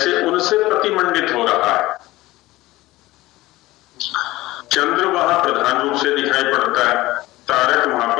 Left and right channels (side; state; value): right; quieter; 18.2 dB